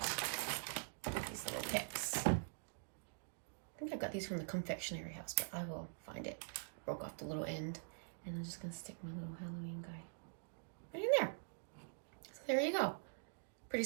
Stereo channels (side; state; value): left; silent; digital silence